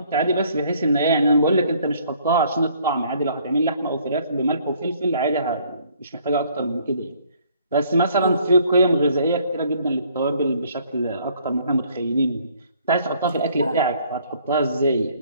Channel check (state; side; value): inverted; both; correlation -0.61